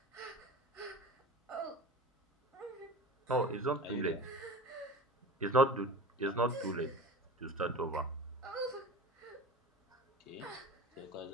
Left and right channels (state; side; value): normal; both; correlation 0.35